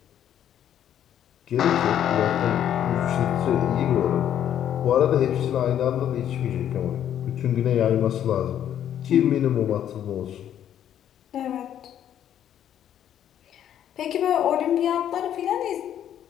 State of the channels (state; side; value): quieter; right; 10.3 dB